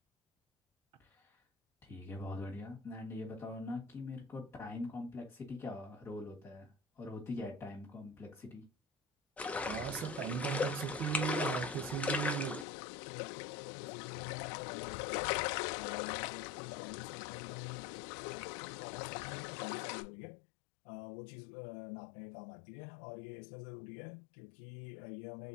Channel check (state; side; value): drops out; right; at 12.7 s